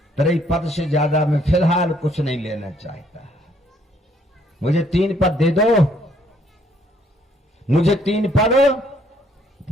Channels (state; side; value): normal; both; correlation 0.66